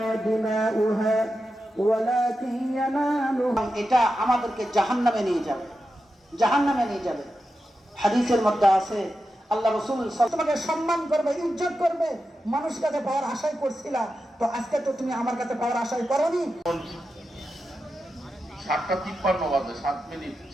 এটা আমাদেরকে জাহান্নামে নিয়ে যাবে, জাহান্নামে নিয়ে যাবে। হাদিসের মধ্যে আছে আল্লাহ রাসূল তোমাকে সম্মান করবে, ইজ্জত করবে, মানুষ কাছে পাওয়ার আশাই করছিলা, তো আজকে তো তুমি আমার কাছে পাওয়ার আশাই করনি। 7:53 বাজে, 7 মিনিট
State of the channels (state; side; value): normal; both; correlation 0.90